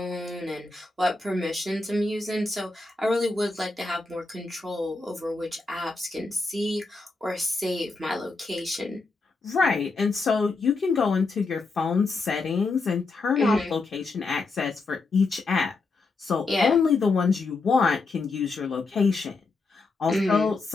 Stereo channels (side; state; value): right; quieter; 3.7 dB